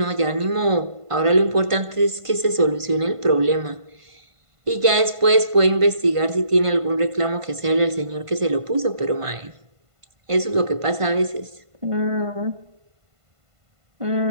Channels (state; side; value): late; left; 1.5 ms